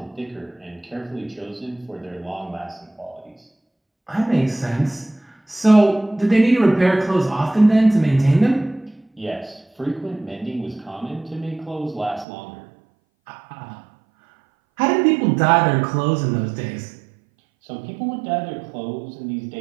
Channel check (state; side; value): drops out; left; at 12.2 s